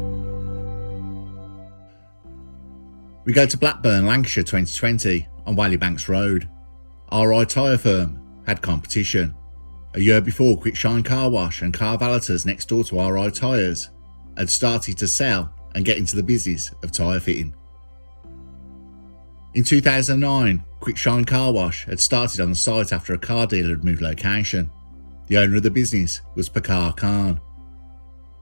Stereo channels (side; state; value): both; inverted; correlation -1.00